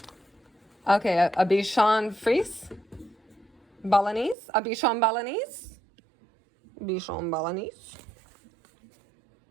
Okay, a Bichon Frise. Balinese. A Bichon Balinese. Bichon Balinese.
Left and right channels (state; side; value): drops out; left; at 4.4 s